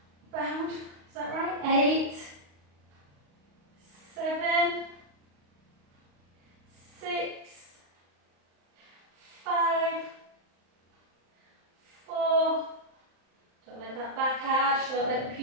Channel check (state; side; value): late; left; 35 ms